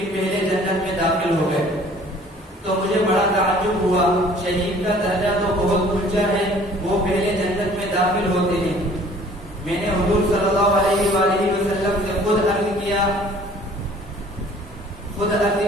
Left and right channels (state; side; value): normal; both; correlation 0.53